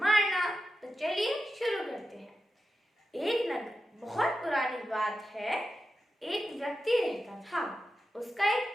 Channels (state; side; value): normal; both; correlation 0.90